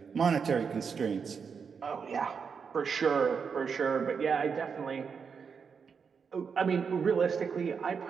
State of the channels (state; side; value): quieter; left; 6.1 dB